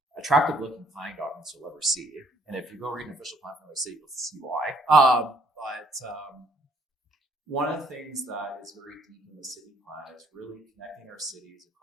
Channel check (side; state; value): both; normal; correlation 0.65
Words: attractive looking planning documents you'll ever see. And if you go read an official plan from the city, you'll see why. But one of the things that is very deep in the city plan is really connecting our cities